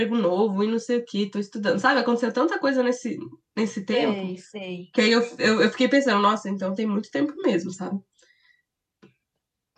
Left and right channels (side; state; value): both; identical; correlation 1.00